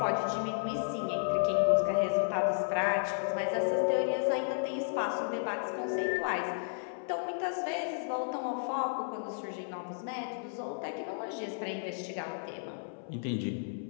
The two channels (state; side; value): silent; right; 56 dB below the other